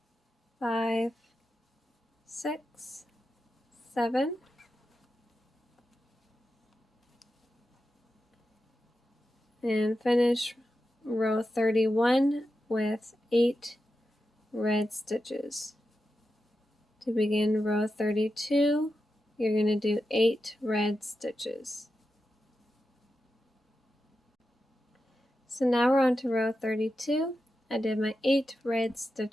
5, 6, 7. And finish row 31 with 8 red stitches. To begin row 32, you're going to do 8 red stitches. So now we're on to row 32. I did my 8 red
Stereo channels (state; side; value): normal; both; correlation 0.90